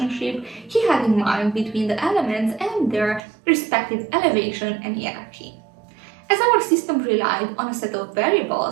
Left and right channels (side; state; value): left; drops out; at 3.2 s